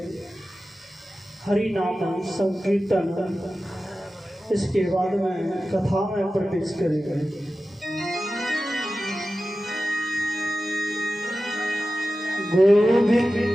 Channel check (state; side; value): normal; both; correlation 0.94